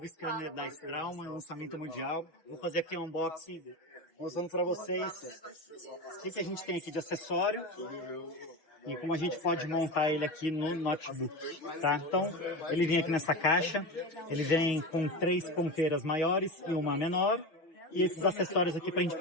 scanner da Straumann, lançamento mundial. Vou fazer aqui um unboxing, mostrando para vocês o que a gente tem aqui de acessório e como a gente pode montar ele aqui no notebook, tá? Então, ele vem aqui nessa caixa, ele vem com 3 ponteiras maiores e uma menor, e esses acessórios aqui para a gente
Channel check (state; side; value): late; right; 6.2 ms